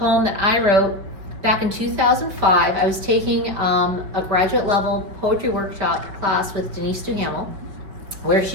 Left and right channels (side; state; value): left; late; 5.1 ms